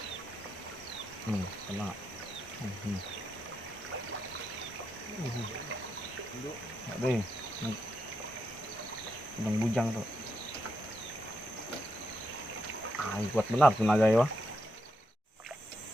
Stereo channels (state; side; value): normal; both; correlation 0.83